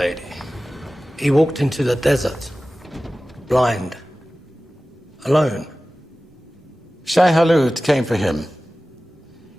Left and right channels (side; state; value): both; normal; correlation 0.96